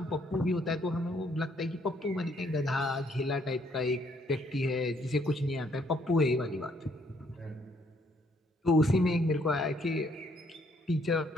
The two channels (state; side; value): normal; both; correlation 0.68